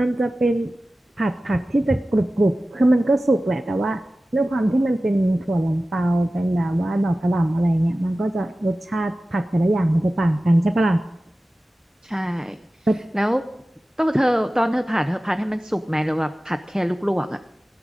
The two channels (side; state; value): both; normal; correlation 0.96